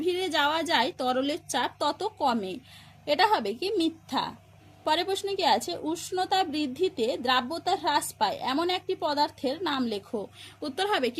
যাওয়া যায় তরলের চাপ তত কমে। এটা হবে কি মিথ্যা। পরের প্রশ্ন কি আছে? উষ্ণতা বৃদ্ধিতে দ্রাব্যতা হ্রাস পায় এমন একটি পদার্থের নাম লেখো। উত্তর হবে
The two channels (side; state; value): both; identical; correlation 1.00